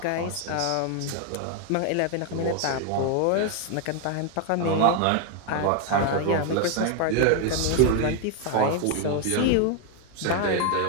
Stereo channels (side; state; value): both; different; correlation 0.01